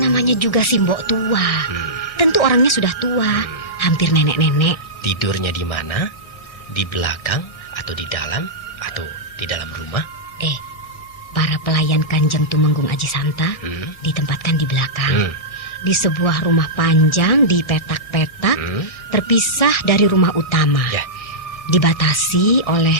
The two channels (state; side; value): late; right; 1.5 ms